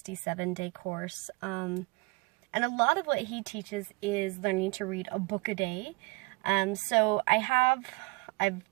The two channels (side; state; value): left; quieter; 26.1 dB